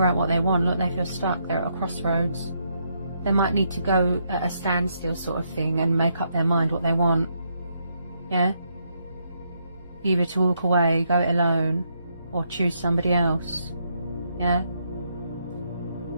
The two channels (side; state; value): both; inverted; correlation -0.76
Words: out what they want. Look, they feel stuck. They're at a crossroads. They might need to go at a standstill sort of thing and make up their mind what they want. Yeah? Either to walk away, go it alone, or choose somebody else. Yeah?